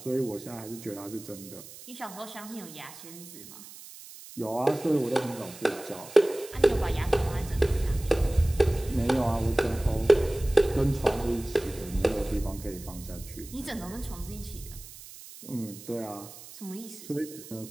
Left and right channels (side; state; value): right; noise; hiss, 16 dB below the sound